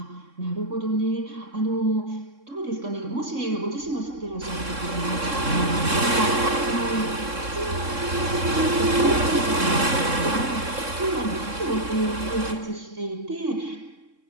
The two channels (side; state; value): left; late; 3.6 ms